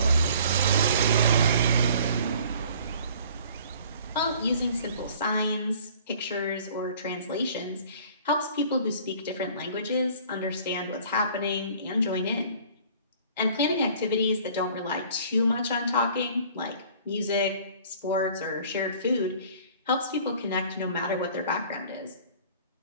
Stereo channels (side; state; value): both; inverted; correlation -0.51